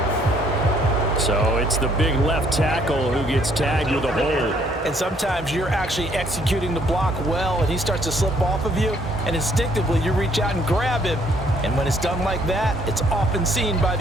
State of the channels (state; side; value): normal; both; correlation 0.65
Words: So it's the big left tackle who gets tagged with a hold. And sometimes you're actually executing the block well, and he starts to slip off of you, and instinctively you reach out and grab him. And when it's done like that, it's often seen by